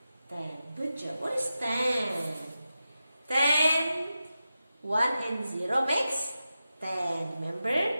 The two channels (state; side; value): inverted; both; correlation -0.91